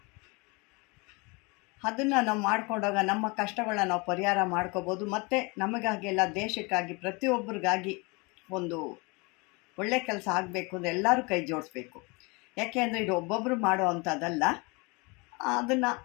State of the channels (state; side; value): quieter; right; 28.1 dB